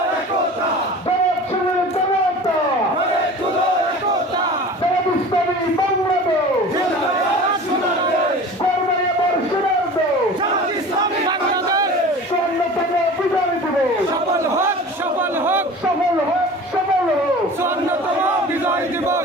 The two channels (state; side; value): normal; both; correlation 0.39